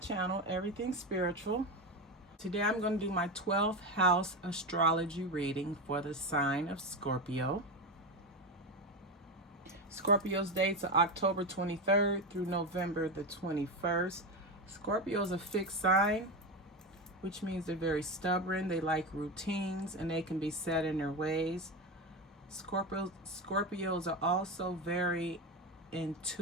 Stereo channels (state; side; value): normal; both; correlation 0.17